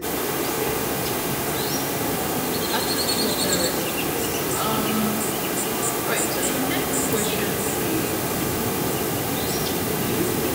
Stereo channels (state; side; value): identical; both; correlation 1.00